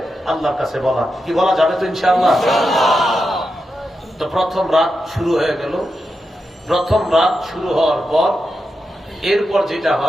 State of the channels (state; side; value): normal; both; correlation 0.88